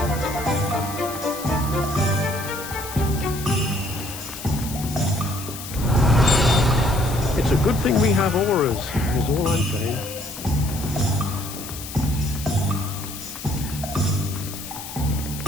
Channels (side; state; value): left; noise; hiss, 11 dB below the sound